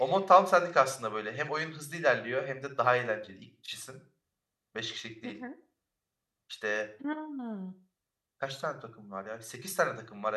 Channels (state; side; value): identical; both; correlation 1.00